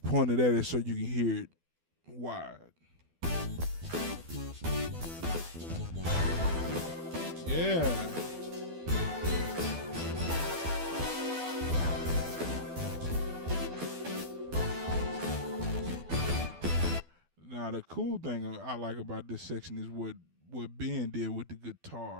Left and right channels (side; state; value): left; late; 12 ms